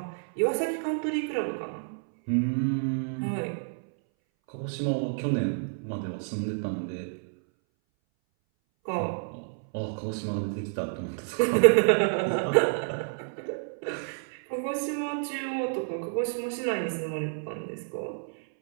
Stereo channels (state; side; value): silent; left; 58 dB below the other